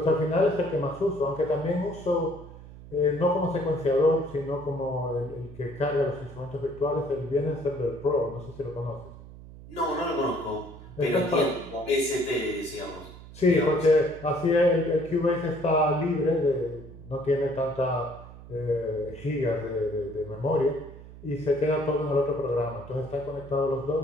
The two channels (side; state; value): right; noise; hum, 17 dB below the sound